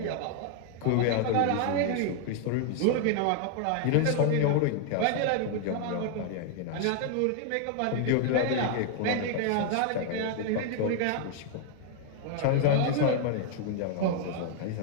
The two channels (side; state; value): both; different; correlation 0.00